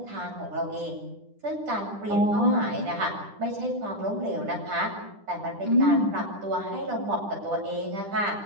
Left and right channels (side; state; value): left; late; 10 ms